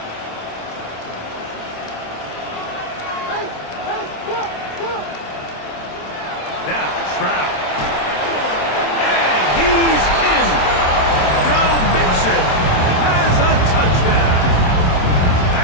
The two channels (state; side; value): late; right; 27 ms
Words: Now, Stroud. And he's in. Joe Mixon has a touchdown.